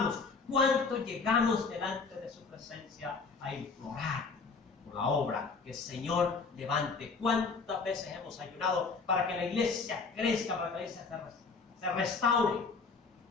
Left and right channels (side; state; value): right; quieter; 4.6 dB